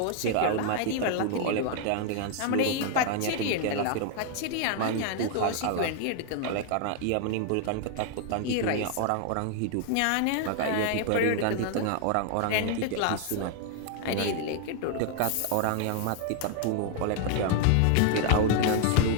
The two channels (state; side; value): different; both; correlation 0.00